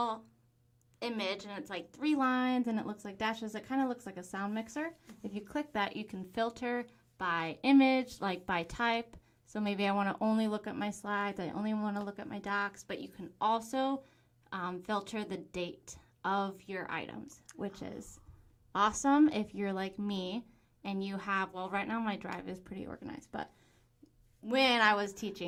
image and it's like 3 lines and it looks like dashes. It kind of looks like a sound mixer. If you click that, you can filter by image, like by type. So maybe I want to only look at my slides, I only want to look at my docs, but you can also filter the date of your items, which is awesome if you're like me and you have, well, right now my Drive is pretty organized, but when I was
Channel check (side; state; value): both; identical; correlation 1.00